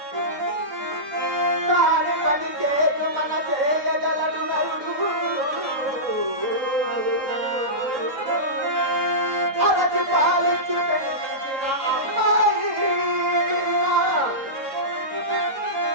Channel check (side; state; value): left; late; 3.7 ms